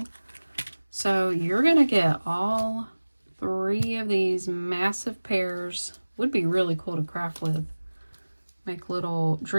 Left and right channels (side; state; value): both; inverted; correlation -1.00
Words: So you're gonna get all 3 of these massive pairs. Would be really cool to craft with. Make little